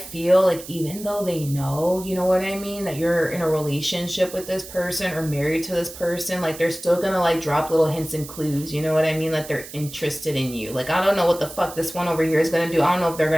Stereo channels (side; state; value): right; noise; hiss, 14 dB below the sound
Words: like even though they know, you know what I mean, that you're in a relationship with this person or married to this person, like they're still gonna like drop little hints and clues, you know what I mean? Like they're interested in you. Like I don't know what the fuck this one over here is gonna do. I don't know if they're